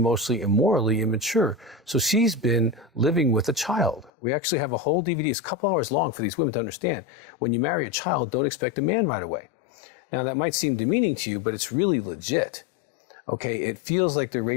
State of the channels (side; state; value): right; drops out; at 4.1 s